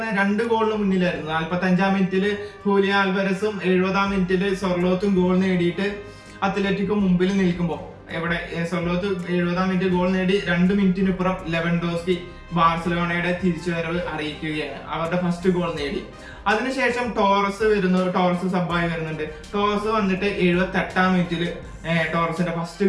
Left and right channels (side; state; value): both; identical; correlation 1.00